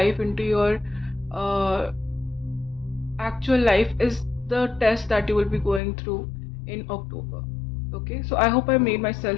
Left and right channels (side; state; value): right; drops out; at 5.8 s